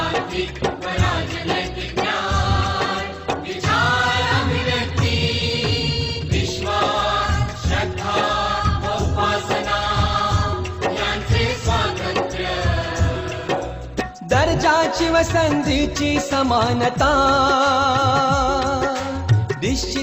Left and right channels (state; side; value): identical; both; correlation 1.00